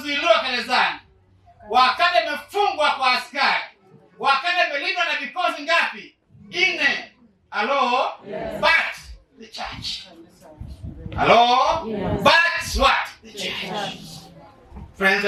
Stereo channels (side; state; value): both; identical; correlation 1.00